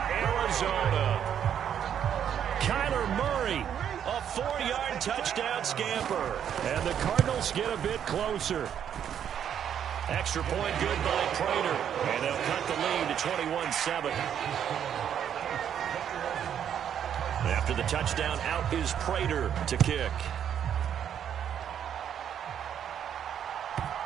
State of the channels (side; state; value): left; quieter; 9.1 dB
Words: Arizona. Kyler Murray, a 4-yard touchdown scamper. And the Cardinals get a bit closer. Extra point good by Prater. And they'll cut the lead to 21-7. After the touchdown, out is Prater to kick.